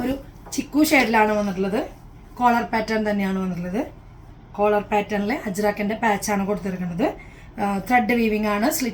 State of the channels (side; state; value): both; identical; correlation 1.00